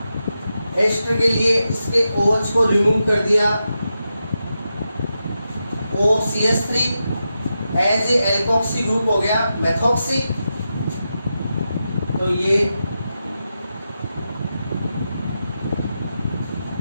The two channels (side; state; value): both; inverted; correlation -0.88